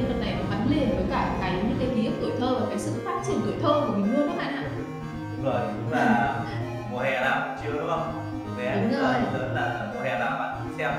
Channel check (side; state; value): both; identical; correlation 1.00